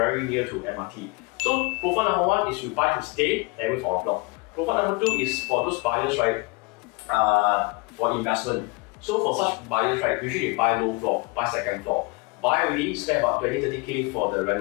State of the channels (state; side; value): quieter; right; 26.8 dB